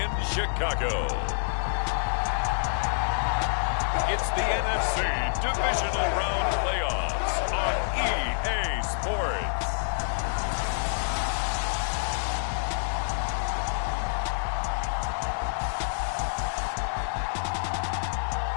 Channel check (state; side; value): silent; right; 60 dB below the other